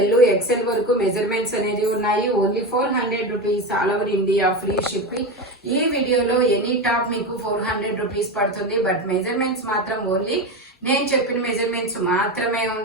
ఎక్సెల్ వరకు మెజర్మెంట్స్ అనేది ఉన్నాయి. Only 400 rupees, all over India free shipping. ఈ వీడియోలో ఎనీ టాప్ మీకు 400 రూపీస్ పడుతుంది. బట్ మెజర్మెంట్స్ మాత్రం ఓన్లీ నేను చెప్పిన మెజర్మెంట్స్ మాత్రమే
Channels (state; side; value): normal; both; correlation 0.19